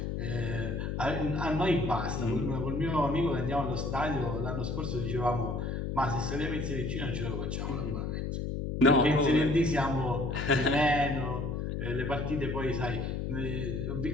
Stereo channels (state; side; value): noise; left; hum, 2 dB below the sound